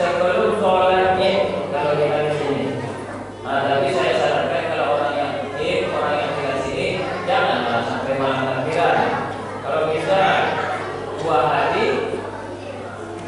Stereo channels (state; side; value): identical; both; correlation 1.00